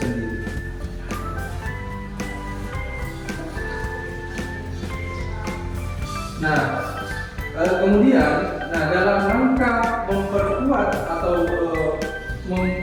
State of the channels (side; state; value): both; identical; correlation 1.00